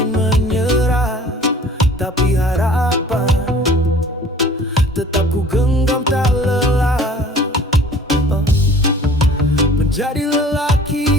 menyerah, tapi harapan tetap ku genggam tak lelah. Menjadi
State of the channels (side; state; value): both; normal; correlation 0.49